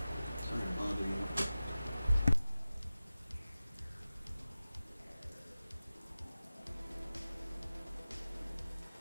Sorry to bother you.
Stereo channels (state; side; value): inverted; both; correlation -0.95